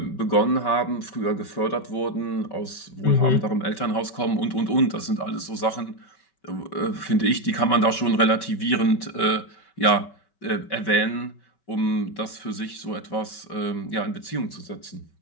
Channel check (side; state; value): right; late; 5.2 ms